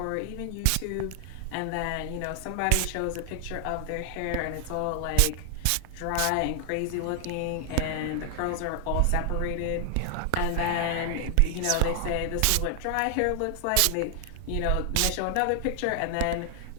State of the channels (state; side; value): different; both; correlation 0.00